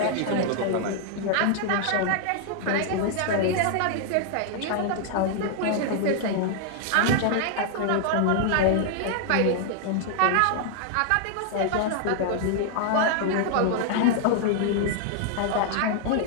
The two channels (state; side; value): different; both; correlation 0.00